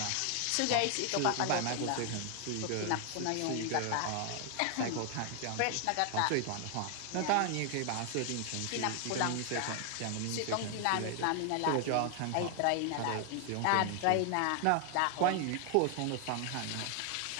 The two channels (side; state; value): both; different; correlation 0.00